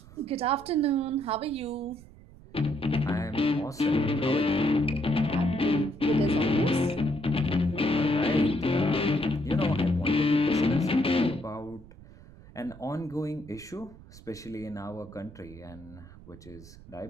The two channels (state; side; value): noise; right; rumble, 20 dB below the sound